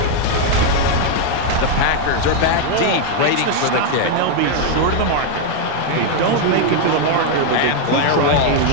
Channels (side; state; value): both; different; correlation 0.01